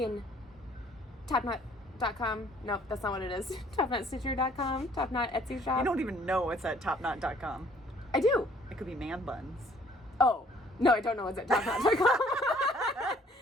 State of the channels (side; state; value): both; normal; correlation 0.59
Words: TopKnot.com. Nope, that's not what it is. TopKnotStitcher.com, TopKnot Etsy shop. You don't even know it's at TopKnot.com. I do. It could be man buns. Oh, no, I don't know what's at TopKnot.com.